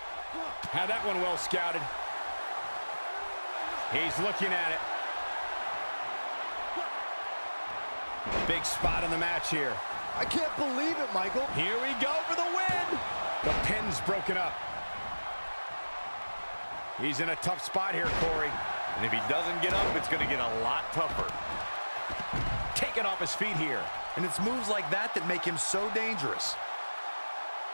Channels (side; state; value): both; inverted; correlation -1.00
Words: Had that one well scouted. He's looking at it. Big spot in the match here. I can't believe it, Michael. Here we go for the win. The pin's broken up. He's in a tough spot here, Corey. And if he doesn't get up, it's going to get a lot tougher. Taken off his feet here. And it's moves like that that make him so dangerous.